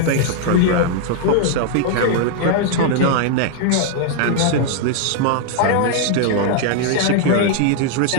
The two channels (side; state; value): both; different; correlation 0.00